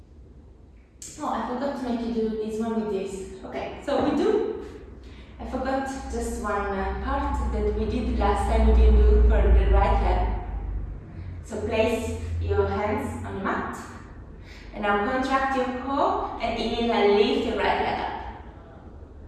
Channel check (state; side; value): identical; both; correlation 1.00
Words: make you do this one with this. Okay, so we do. I forgot just one part that we did last time we didn't do for the right leg. So place your hands on the mat. And now contract your core and inhale, lift your right leg up.